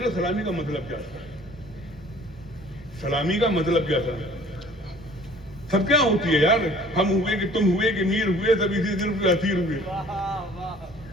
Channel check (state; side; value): normal; both; correlation 0.52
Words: لو, سلامی کا مطلب کیا تھا؟ سلامی کا مطلب کیا تھا؟ سب کیا ہوتی ہے یار, ہم ہوئے کہ تم ہوئے کہ میر ہوئے, سب اسی دن کے اسیر ہوئے.